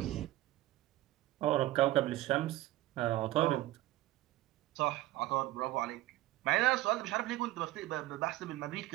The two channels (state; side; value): quieter; left; 16.3 dB